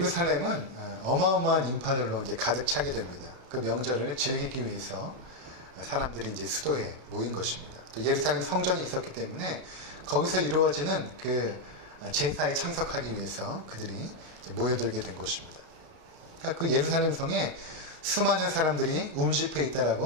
어마어마한 인파들로 이제 가득 차게 됩니다. 그 명절을 즐기기 위해서 사람들이 이제 수도에 모인 것입니다. 또 예루살렘 성전이 있었기 때문에 거기서 이루어지는 그 제사에 참석하기 위해서 그들이 이제 모여들게 된 것입니다. 그러니까 그 예루살렘 성에 수많은 사람들이 움집해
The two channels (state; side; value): late; left; 32 ms